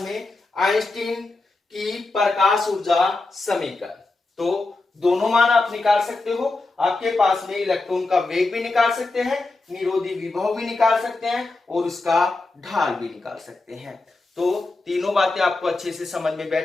आइंस्टीन की प्रकाश ऊर्जा समीकरण। तो दोनों मान आप निकाल सकते हो, आपके पास में इलेक्ट्रॉन का वेग भी निकाल सकते हैं, निरोधी विभव भी निकाल सकते हैं और उसका ढाल भी निकाल सकते हैं। तो तीनों बातें आपको अच्छे से समझ में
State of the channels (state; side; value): quieter; right; 3.4 dB